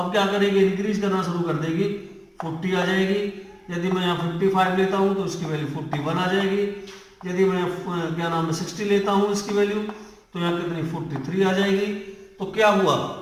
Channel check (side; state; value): both; identical; correlation 1.00